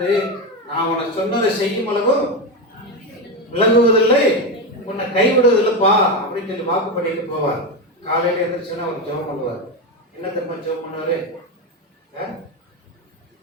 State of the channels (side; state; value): both; normal; correlation 0.13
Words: நான் உனக்கு சொன்னதை செய்யும் அளவு விளங்குவதில்லை, உன்னை கைவிடுவதில்லைப்பா அப்படின்னு சொல்லி வாக்கு பண்ணிட்டு போவார். காலையில எழுந்திரிச்சுன்னா அவர் ஜெபம் பண்ணுவார். என்ன திரும்ப ஜெபம் பண்ணுவாரு?